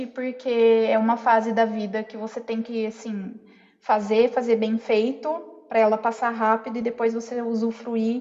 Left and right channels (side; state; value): both; identical; correlation 1.00